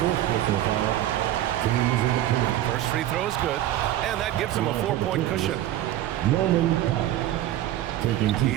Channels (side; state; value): left; quieter; 13.2 dB